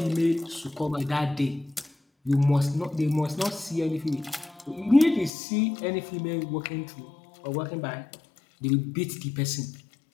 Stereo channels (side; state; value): right; drops out; at 5.3 s